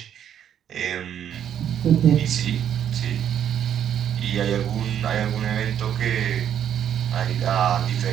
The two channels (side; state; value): left; quieter; 9.5 dB